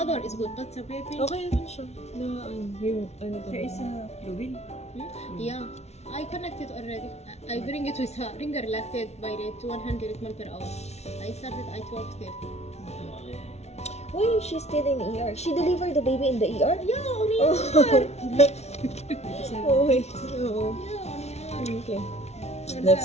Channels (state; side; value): late; right; 0.31 ms